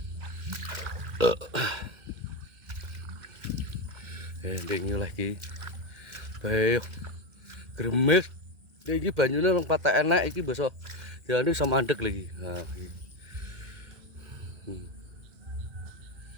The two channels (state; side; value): late; left; 2.1 ms